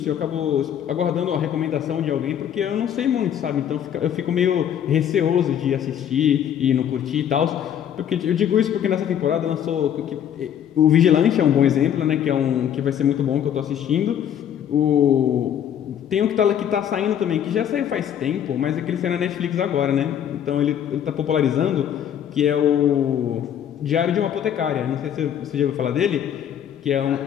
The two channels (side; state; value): right; quieter; 9.5 dB